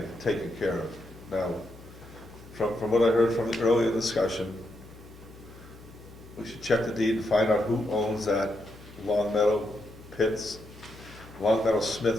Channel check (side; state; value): left; noise; hum, 20 dB below the sound